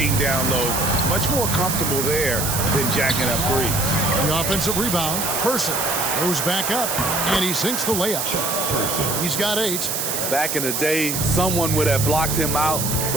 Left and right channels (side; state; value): right; noise; hiss, 1 dB below the sound